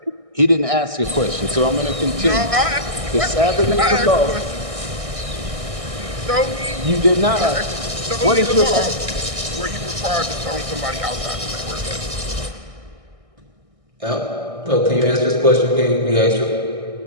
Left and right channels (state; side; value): late; left; 1.6 ms